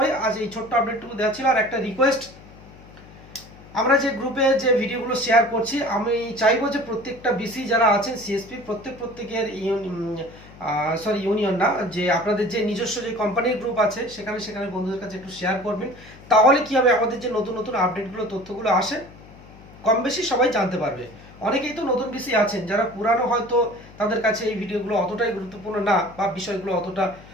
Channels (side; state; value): left; noise; hum, 21 dB below the sound